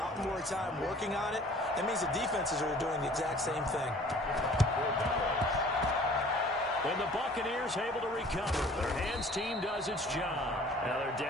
more time working on it. That means the defenses are doing the exact same thing. And the Buccaneers able to recover. Their hands team does its job. Now they're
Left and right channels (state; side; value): normal; both; correlation 0.51